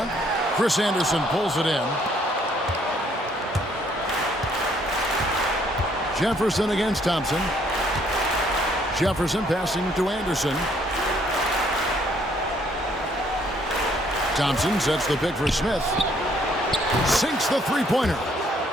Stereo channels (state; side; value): normal; both; correlation 0.66